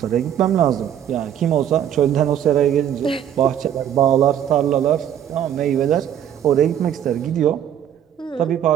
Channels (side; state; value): left; quieter; 10.0 dB